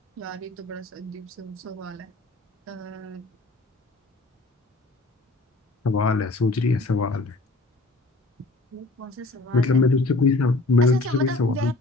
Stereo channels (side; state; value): right; quieter; 3.1 dB